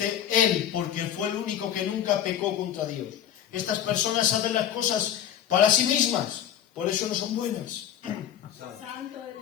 Él, porque fue el único que nunca pecó contra Dios. Estas personas hacen las cosas para sí mismas, por eso no son buenas.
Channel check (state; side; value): quieter; right; 10.2 dB